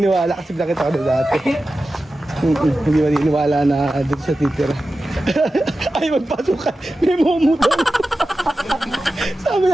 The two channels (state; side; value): normal; both; correlation 0.93